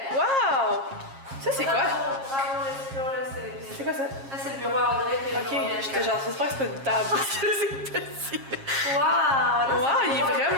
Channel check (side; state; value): left; late; 7.4 ms